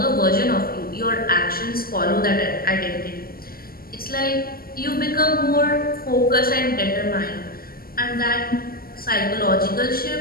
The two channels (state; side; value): late; right; 0.43 ms